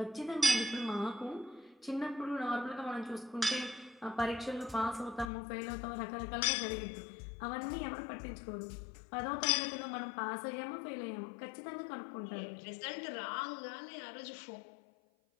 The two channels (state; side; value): drops out; right; at 5.3 s